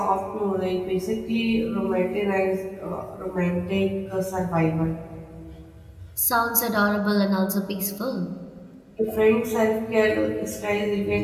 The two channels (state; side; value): identical; both; correlation 1.00